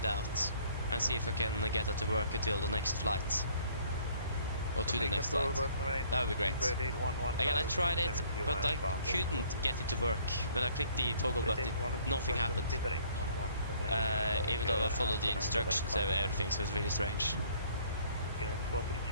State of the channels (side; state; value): both; inverted; correlation -0.58